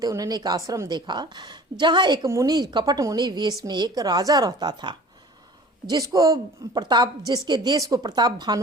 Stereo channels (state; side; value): normal; both; correlation 0.44